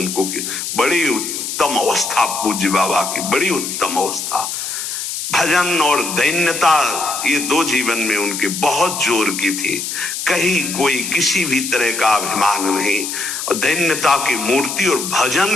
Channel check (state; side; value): noise; left; hiss, 5 dB below the sound